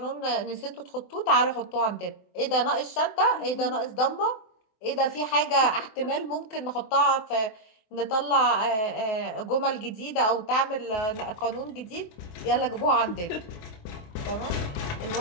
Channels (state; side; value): late; right; 24 ms